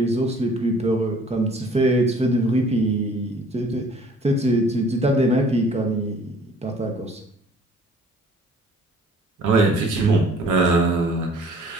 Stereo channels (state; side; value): normal; both; correlation 0.54